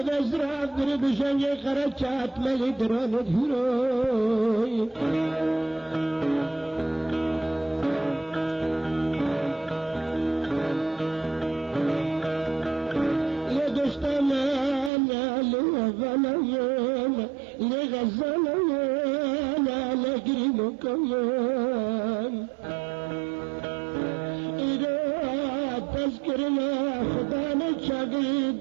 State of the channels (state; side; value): drops out; left; at 14.9 s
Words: بزرع برب شنجي خرجات ملي دران الهروي غلايين لغزلايين على قريبكم إذا کرنا خدا نے چاگری